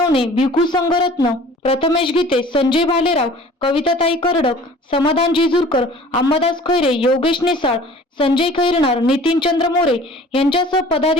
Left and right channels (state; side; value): normal; both; correlation 0.47